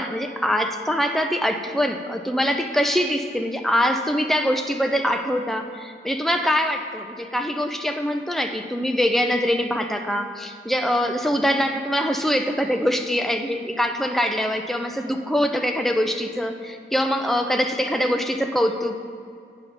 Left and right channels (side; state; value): both; normal; correlation 0.81